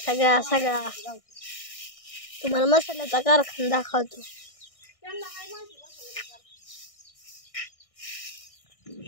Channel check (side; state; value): right; late; 1.6 ms